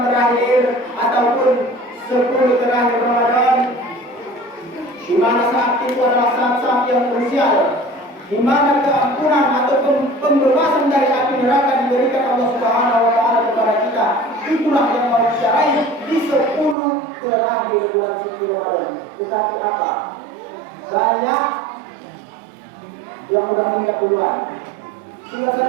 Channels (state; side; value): drops out; left; at 16.8 s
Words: terakhir ataupun 10 terakhir Ramadan, di mana saat itu adalah saat-saat yang krusial, di mana keampunan ataupun pembebasan dari api neraka diberikan Allah Subhanahu wa taala kepada kita. Itulah yang mau kita raih di 10 terakhir bulan suci Ramadan. Tetapi apa? Banyak yang udah meninggal duluan. Tinggal